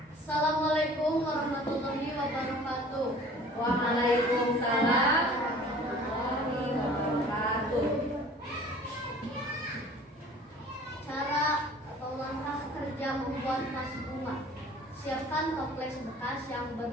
Assalamualaikum warahmatullahi wabarakatuh. Waalaikumsalam warahmatullahi wabarakatuh. Cara atau langkah kerja membuat vas bunga. Siapkan toples bekas yang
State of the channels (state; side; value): normal; both; correlation 0.48